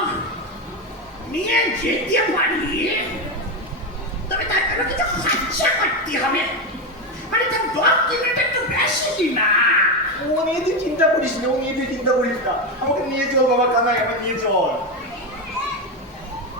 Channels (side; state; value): both; normal; correlation 0.12